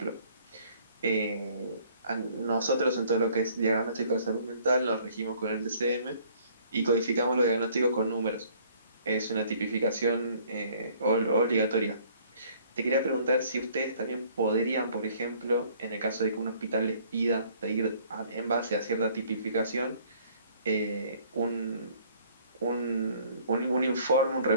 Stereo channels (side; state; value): both; inverted; correlation -0.58